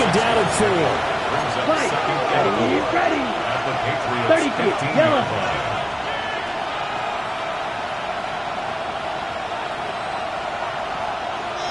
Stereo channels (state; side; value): identical; both; correlation 1.00